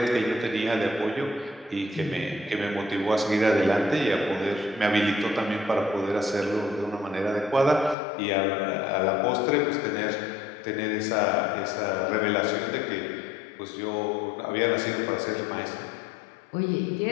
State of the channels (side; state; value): right; drops out; at 8.0 s